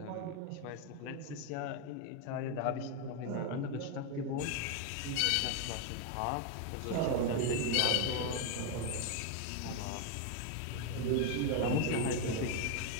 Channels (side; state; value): both; different; correlation 0.01